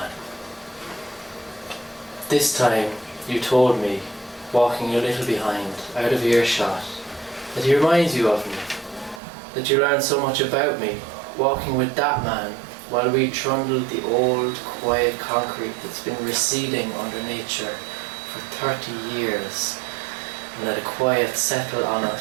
This time you told me, walking a little behind, out of earshot, that he reminds you of me, that you learned so much about me, walking with that man, while we trundled the old, quiet concrete that's been receding under nature for 30 years, and let a quiet settle on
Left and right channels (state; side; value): drops out; left; at 9.2 s